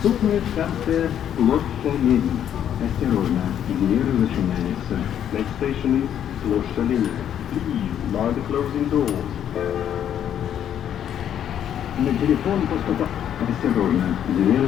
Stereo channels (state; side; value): quieter; right; 9.8 dB